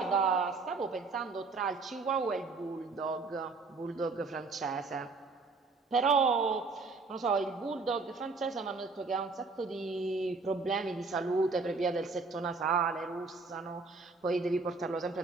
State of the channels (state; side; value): quieter; left; 4.1 dB